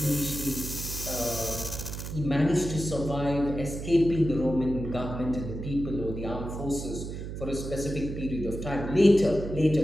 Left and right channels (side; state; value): right; noise; hum, 7 dB below the sound